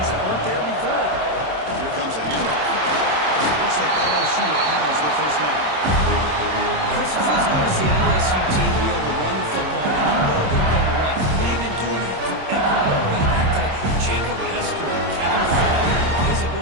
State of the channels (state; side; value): late; left; 27 ms